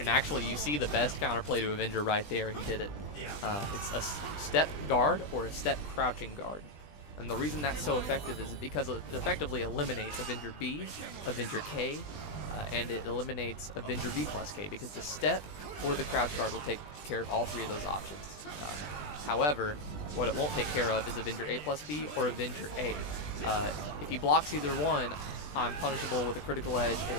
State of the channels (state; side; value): late; right; 20 ms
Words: actually, you see the best counterplay to Avenger right there. He did it. It's a step guard or a step crouching guard. And the reason that's so effective is because it effectively eliminates Avenger B, Avenger K, and it eliminates Avenger B plus K because the step or the crouch guard will take care of all three of those options. However, what it won't take care of is Avenger A plus B or Avenger A. If he blocks either one, I'm punishable with a critical edge